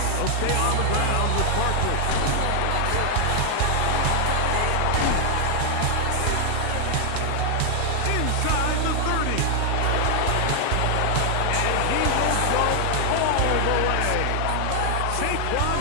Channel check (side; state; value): both; different; correlation 0.00